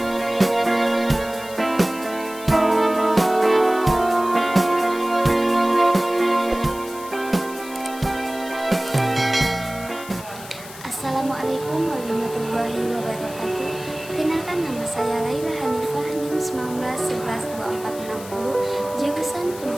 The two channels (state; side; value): noise; left; hiss, 16 dB below the sound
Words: warahmatullahi wabarakatuh. Kenalkan, nama saya Laila Hanifah, NIM 19112460, jurusan